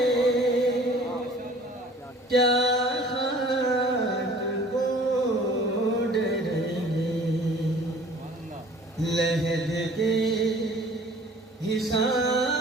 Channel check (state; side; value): normal; both; correlation 0.49